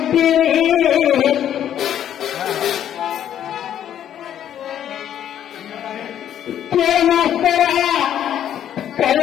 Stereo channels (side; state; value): right; quieter; 10.4 dB